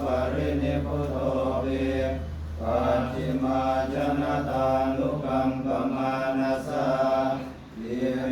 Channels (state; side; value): identical; both; correlation 1.00